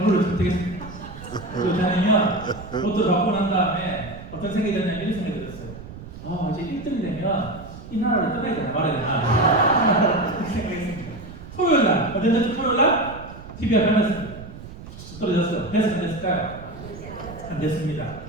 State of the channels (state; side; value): noise; right; rumble, 14 dB below the sound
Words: 선택했습니다. 그렇다면 로또를 바꾸고 난 다음에 어떤 생각이 들었냐면 이런 생각이 들었어요. 이제 1등이 되면 이 나라를 떠나야 되나 말아야 되나 이렇게 생각했습니다. 토요일 날, 어땠는지 토요일 날 TV가 변했습니다. 떨어졌어요. 됐어요? 안 됐을까요? 안 됐습니다.